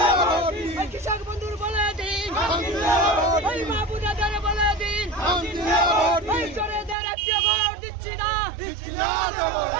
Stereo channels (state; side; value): drops out; left; at 7.0 s